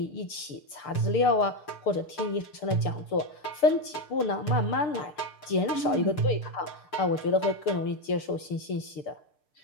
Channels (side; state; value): right; late; 6.7 ms